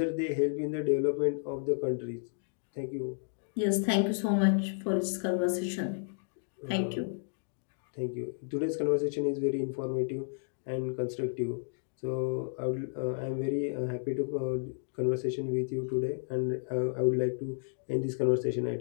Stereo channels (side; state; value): right; silent; digital silence